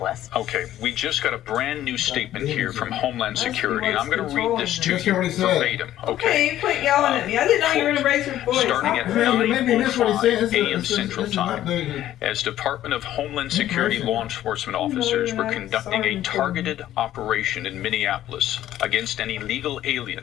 Okay, we just got a brand new statement here from Homeland Security, and I'm going to read this to you verbatim. Okay, you quit yelling at me. I didn't know you were going to raise your voice. Starting at 9:05 a.m. Central Time, as Department of Homeland Security law enforcement officers were conducting a targeted operation in Minneapolis against an illegal alien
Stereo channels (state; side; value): quieter; right; 12.9 dB